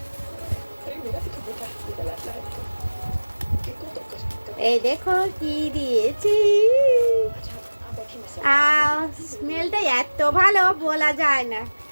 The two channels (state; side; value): inverted; both; correlation -1.00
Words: এই দেখো কি দিয়েছি, স্মেলটা এত ভালো বলা যায় না।